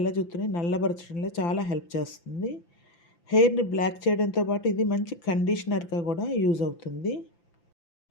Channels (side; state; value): right; late; 5.9 ms